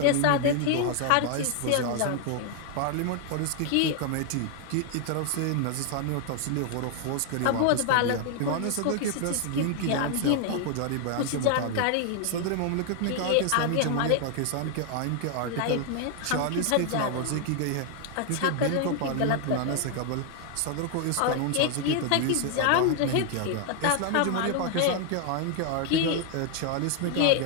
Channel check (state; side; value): different; both; correlation 0.00